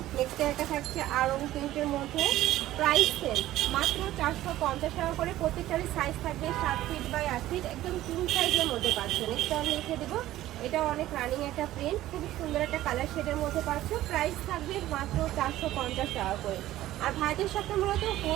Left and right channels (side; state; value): left; quieter; 14.7 dB